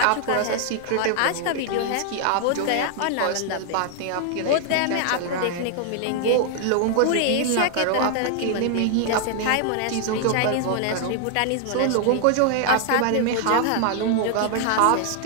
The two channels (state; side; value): different; both; correlation 0.00